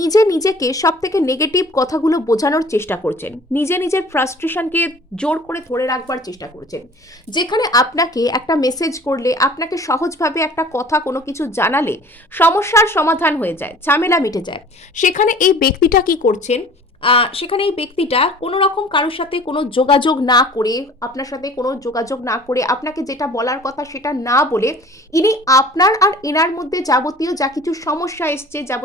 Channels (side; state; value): both; normal; correlation 0.47